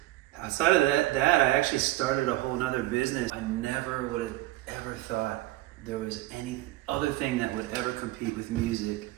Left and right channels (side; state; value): left; quieter; 17.0 dB